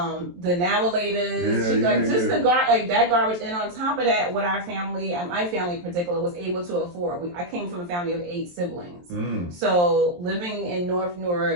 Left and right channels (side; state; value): left; late; 23 ms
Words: navilators, that garbage. And on top of that, what our family, and my family in particular, was able to afford. I came from a family of 8 siblings. So living in North